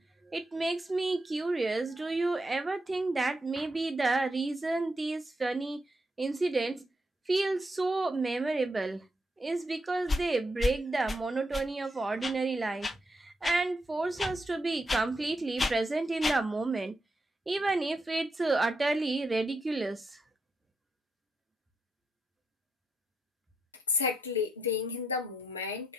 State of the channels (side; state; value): both; normal; correlation 0.83